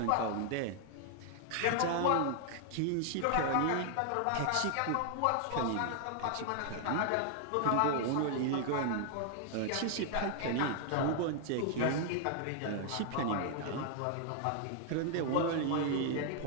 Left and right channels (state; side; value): different; both; correlation 0.00